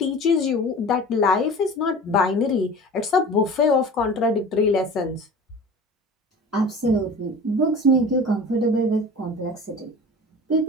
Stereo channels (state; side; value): normal; both; correlation 0.38